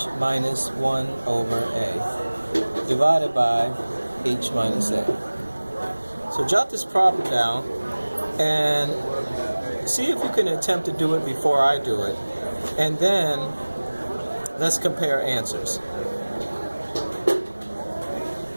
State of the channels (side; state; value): both; inverted; correlation -1.00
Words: minus 1 over a divided by h minus a. So jot this problem down and see if you can attempt to do it before I do it, and then let's compare answers.